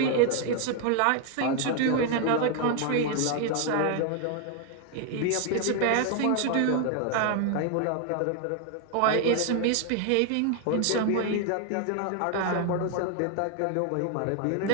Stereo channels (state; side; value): different; both; correlation 0.00